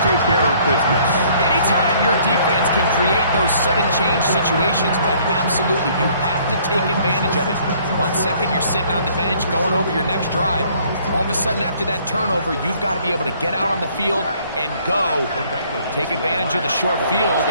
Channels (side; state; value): both; inverted; correlation -0.60